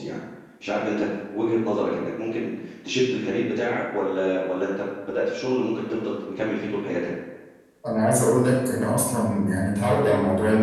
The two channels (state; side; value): identical; both; correlation 1.00